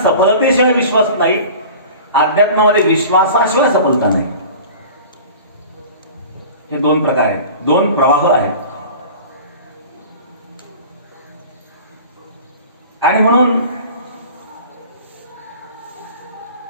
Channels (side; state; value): both; inverted; correlation -0.40